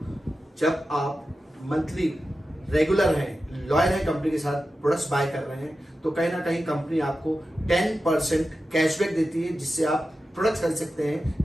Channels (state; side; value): normal; both; correlation 0.92